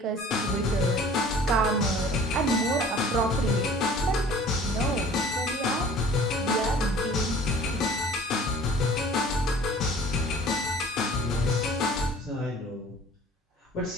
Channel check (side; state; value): both; normal; correlation 0.48